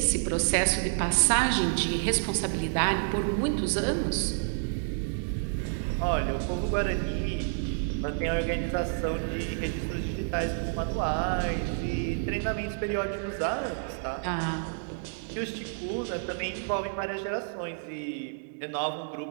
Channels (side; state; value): left; silent; digital silence